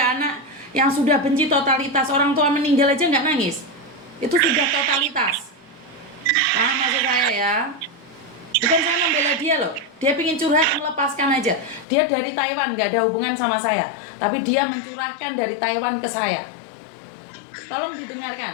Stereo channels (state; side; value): drops out; right; at 11.9 s